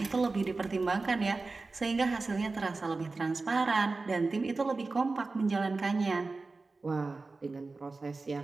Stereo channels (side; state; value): left; quieter; 3.7 dB